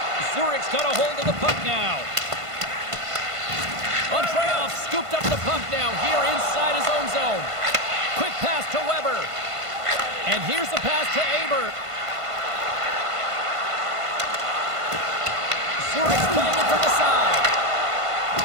Zurich's got a hold of the puck now. Andreoff scooped up the puck now here inside his own zone. Quick pass to Weber. And here's the pass to Aber. Zurich's playing it from the side.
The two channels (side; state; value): left; late; 1.5 ms